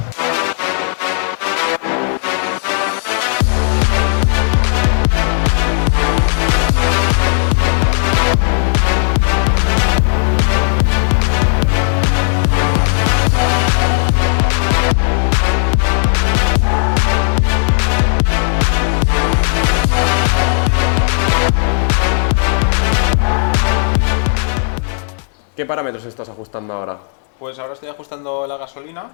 ¿Qué parámetros estás ajustando ahora? Pues ahora estoy ajustando la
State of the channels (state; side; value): silent; right; 66 dB below the other